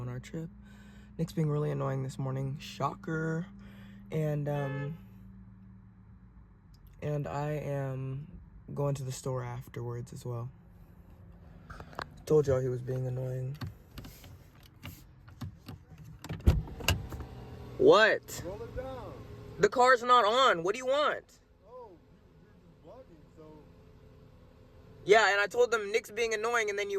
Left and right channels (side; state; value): both; identical; correlation 1.00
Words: our trip. Nick's being really annoying this morning. Shocker. And I am going to the store afterwards as well. Told y'all he was being annoying. What? Roll it down. The car's not on. What do you want? Oh, you're vlogging, so. Yeah, and I told them Nick's being annoying and then